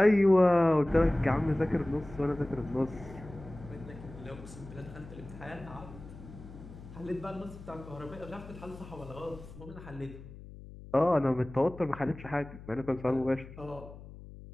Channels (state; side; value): noise; left; hum, 16 dB below the sound